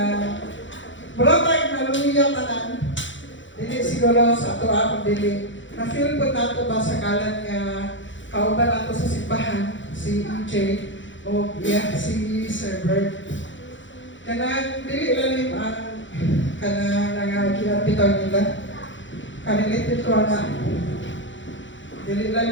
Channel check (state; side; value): late; right; 0.55 ms